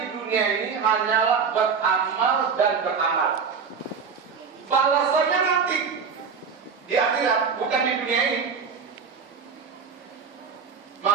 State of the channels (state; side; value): quieter; left; 5.9 dB